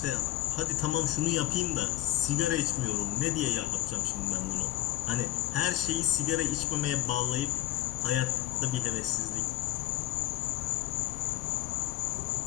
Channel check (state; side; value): quieter; right; 15.8 dB